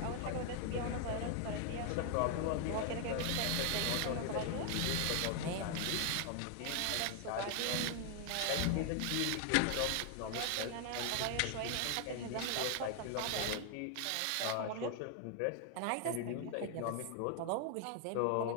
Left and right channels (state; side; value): different; both; correlation 0.00